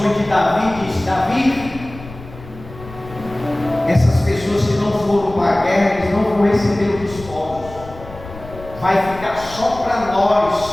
de Davi dizem: Davi, essas pessoas que não foram para a guerra, eles não vão receber os despojos, vai ficar só para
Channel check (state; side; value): noise; left; rumble, 16 dB below the sound